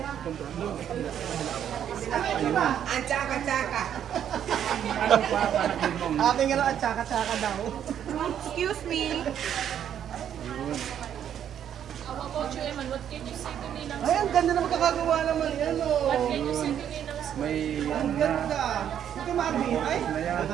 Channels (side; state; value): left; quieter; 9.6 dB